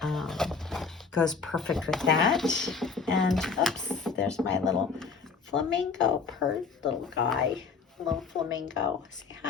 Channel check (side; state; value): right; quieter; 5.1 dB